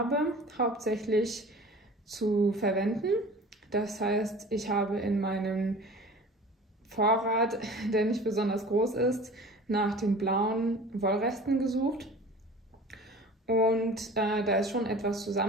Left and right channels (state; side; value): normal; both; correlation 0.41